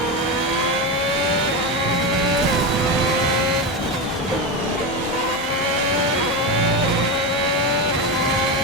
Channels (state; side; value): normal; both; correlation 0.17